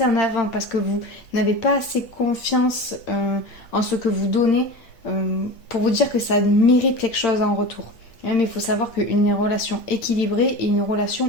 en avant, parce que vous n'avez pas assez confiance en ce que vous donnez pour vous dire que ça mérite quelque chose en retour. Mais il faut savoir qu'une relation équilibrée est une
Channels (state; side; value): late; right; 8.8 ms